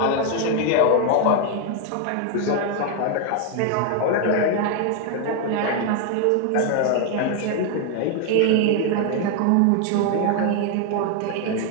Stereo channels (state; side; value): different; both; correlation 0.01